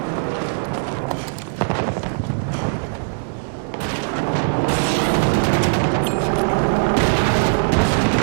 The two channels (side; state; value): left; silent; digital silence